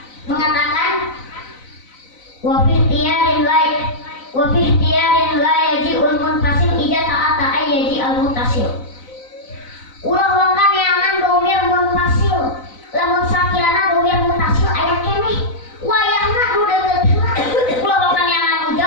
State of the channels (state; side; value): late; right; 4.0 ms